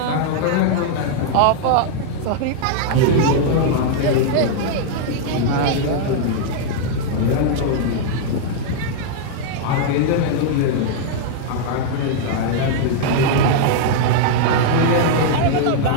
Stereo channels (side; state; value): both; different; correlation -0.01